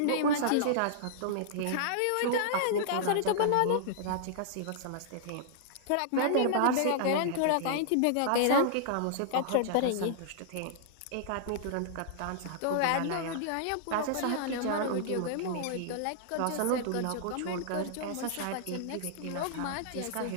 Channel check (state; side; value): different; both; correlation -0.01